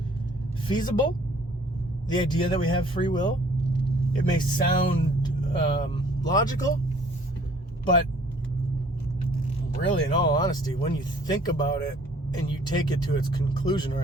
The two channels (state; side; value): normal; both; correlation 0.57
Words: feasible, the idea that we have free will. It may sound logical, but really, in all honesty, when you think about it and you take it to its conclusion, or